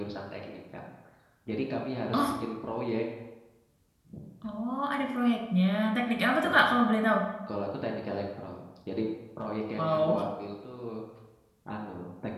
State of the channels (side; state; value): both; identical; correlation 1.00